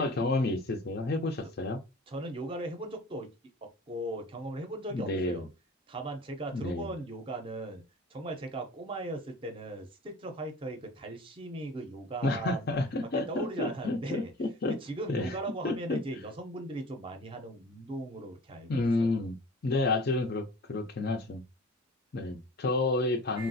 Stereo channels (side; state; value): both; normal; correlation 0.42